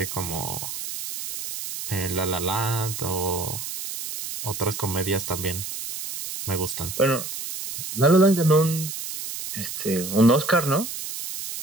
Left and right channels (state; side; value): noise; right; hiss, 7 dB below the sound